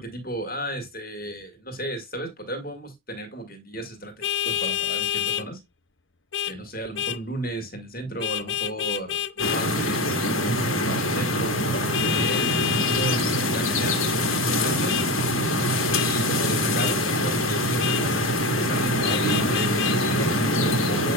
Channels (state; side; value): normal; both; correlation 0.20